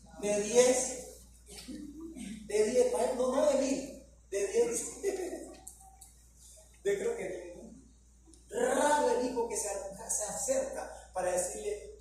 De 10, no de 1000, de 10. Yo creo que raro el hijo que se acerca para decirle:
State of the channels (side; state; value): both; identical; correlation 1.00